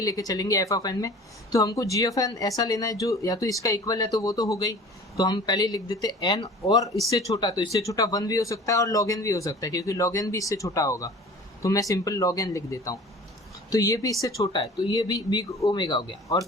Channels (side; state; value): both; normal; correlation 0.43